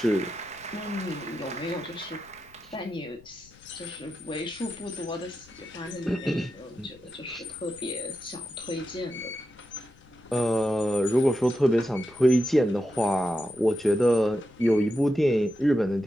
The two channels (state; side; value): noise; left; rumble, 26 dB below the sound